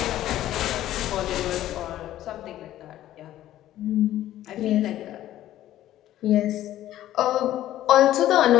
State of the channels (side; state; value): right; quieter; 13.4 dB